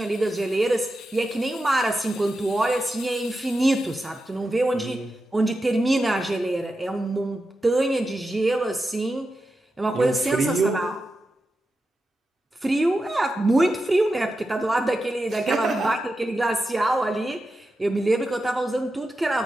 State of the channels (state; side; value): normal; both; correlation 0.90